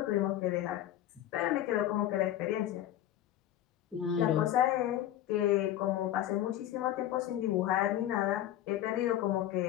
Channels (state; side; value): quieter; right; 12.4 dB